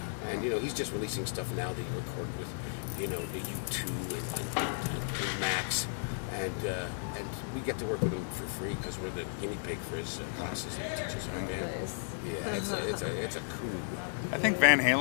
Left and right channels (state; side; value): silent; right; digital silence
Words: And he's just releasing stuff now that he recorded with, the U2 and Max, and we get to work with him for free because we're the guinea pig for his classes that he teaches our band. Nice. Yeah, it's a coup. I think Van